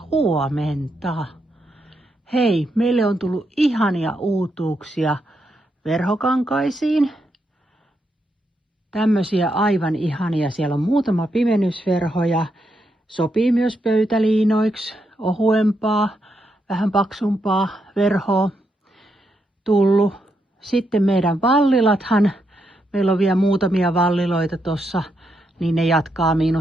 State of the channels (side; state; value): both; normal; correlation 0.81